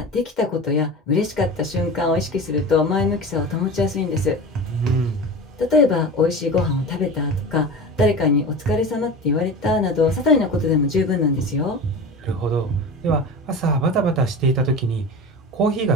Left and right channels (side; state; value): both; normal; correlation 0.30